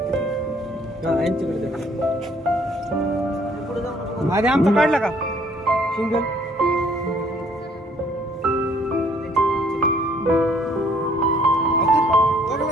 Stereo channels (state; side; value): normal; both; correlation 0.62